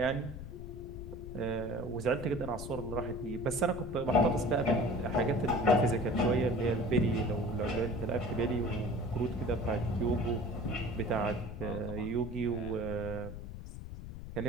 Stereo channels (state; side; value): noise; left; rumble, 10 dB below the sound